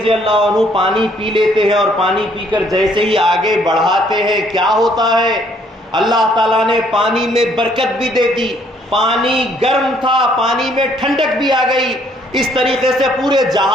اللہ عنہ پانی پی لیتے ہیں، اور پانی پی کر جیسے ہی آگے بڑھاتے ہیں کیا ہوتا ہے، اللہ تعالیٰ نے پانی میں برکت بھی دے دی، پانی گرم تھا، پانی میں ٹھنڈک بھی آ گئی، اس طریقے سے پورے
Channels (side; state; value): both; normal; correlation 0.65